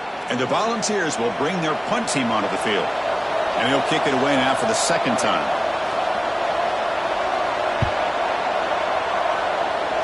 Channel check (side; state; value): both; identical; correlation 1.00